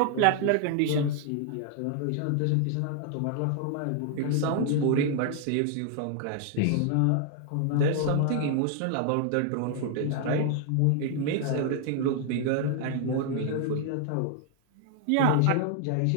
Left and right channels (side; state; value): both; different; correlation 0.00